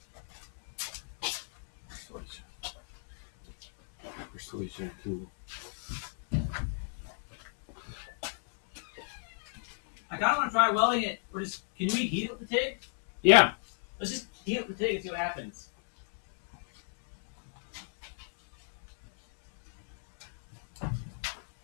Persuasion tool. I kind of want to try welding it, or just, can we heat it with the TIG? Yeah. Let's just heat it with the TIG and see what happens.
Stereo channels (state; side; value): silent; right; digital silence